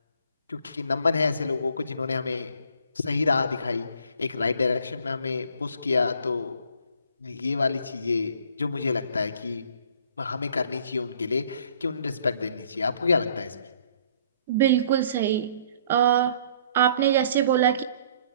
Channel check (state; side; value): inverted; both; correlation -0.58